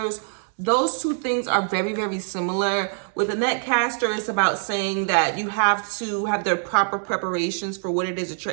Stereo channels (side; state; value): left; silent; digital silence